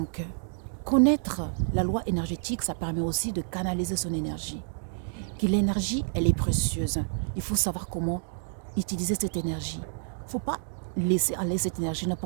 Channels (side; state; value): left; silent; digital silence